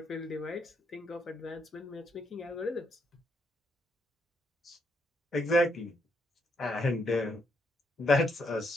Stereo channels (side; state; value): both; normal; correlation 0.76